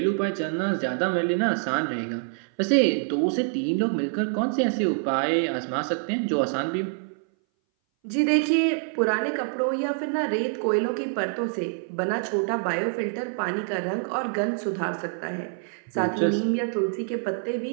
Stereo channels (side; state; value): left; silent; 59 dB below the other